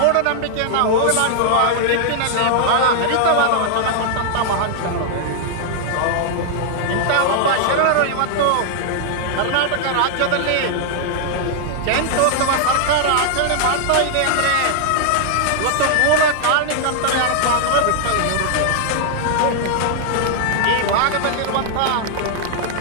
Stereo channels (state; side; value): different; both; correlation -0.01